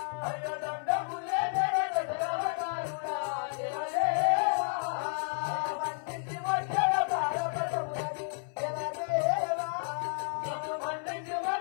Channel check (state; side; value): silent; right; 57 dB below the other